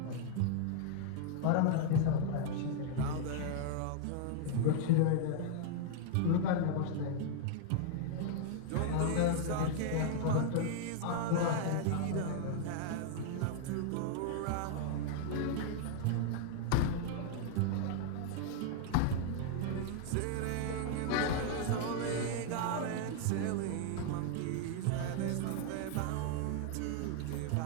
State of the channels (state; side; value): different; both; correlation 0.00